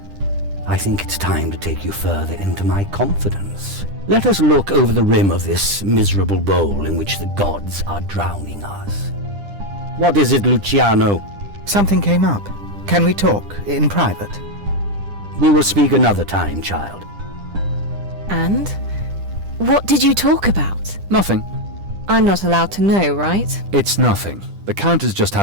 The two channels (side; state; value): left; late; 10 ms